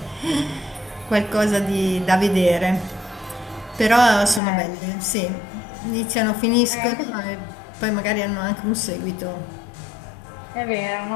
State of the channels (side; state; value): right; drops out; at 4.4 s